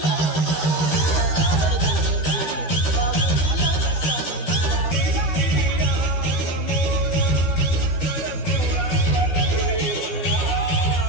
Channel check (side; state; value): right; late; 13 ms